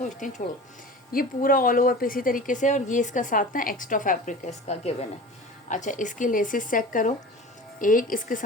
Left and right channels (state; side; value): normal; both; correlation 0.36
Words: हैं छोड़ो। ये पूरा ऑल ओवर पे इसी तरीके से, और ये इसका साथ ना एक्स्ट्रा फैब्रिक है इसका गिवन है। अच्छा, इसकी लेसेस चेक करो, एक इसके